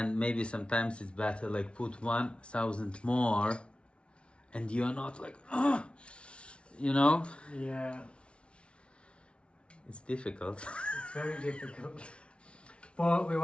maybe sometimes it's better put 1,000 more and you're not Yeah. It's difficult. It's very difficult. But we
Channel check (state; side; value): late; right; 0.059 ms